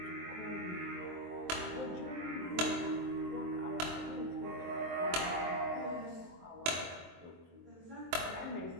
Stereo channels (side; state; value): left; late; 23 ms